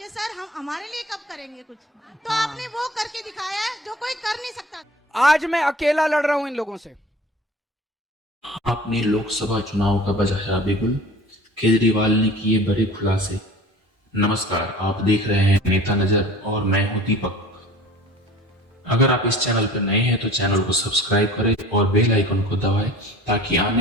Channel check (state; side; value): normal; both; correlation 0.43